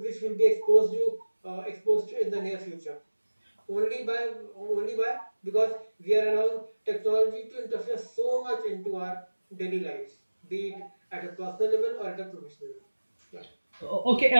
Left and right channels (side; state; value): both; inverted; correlation -1.00